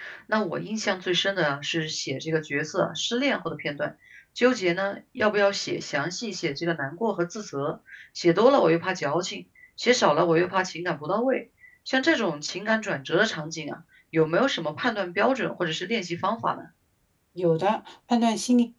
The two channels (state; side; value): identical; both; correlation 1.00